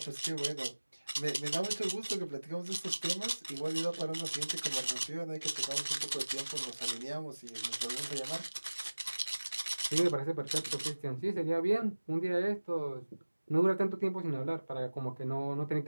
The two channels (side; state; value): both; inverted; correlation -1.00